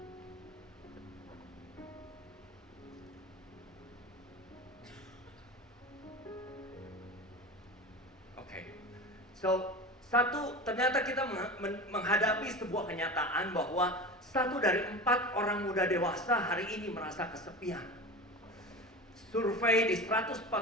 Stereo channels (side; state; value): both; normal; correlation 0.30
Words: So, ternyata kita menghadapi sebuah kenyataan bahwa 1 dari 4 orang muda dewasa hari ini merasa kesepian. Survei di 142